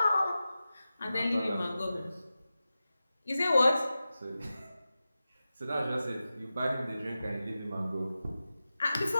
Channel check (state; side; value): inverted; both; correlation -0.94